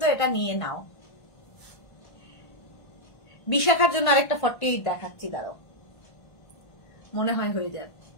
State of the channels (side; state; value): right; late; 1.5 ms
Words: এটা নিয়ে নাও। বিশাখার জন্য আরেকটা 48 দেখাচ্ছি, দাঁড়াও, মনে হয় হয়ে যাবে।